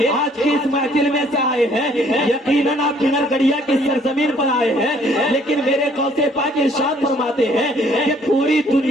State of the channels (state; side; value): normal; both; correlation 0.61